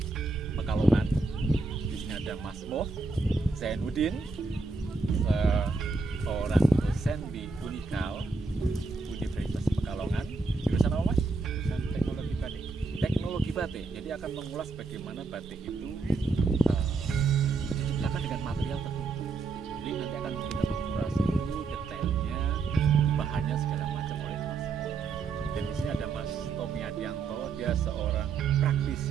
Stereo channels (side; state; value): left; quieter; 4.0 dB